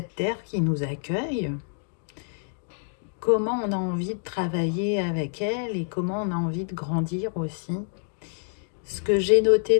terre qui nous accueille? Comment on a envie de travailler avec elle et comment on a envie de grandir aussi? Ce que j'ai noté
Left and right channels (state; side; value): silent; right; 60 dB below the other